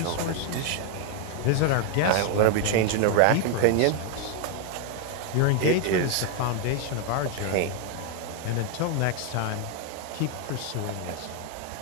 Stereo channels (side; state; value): both; different; correlation 0.01